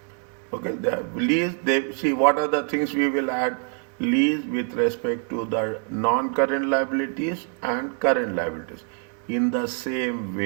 Okay. They have lease. They see what are the things we will add. Lease with respect to the non-current liabilities and current liabilities. In the same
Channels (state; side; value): quieter; left; 37.6 dB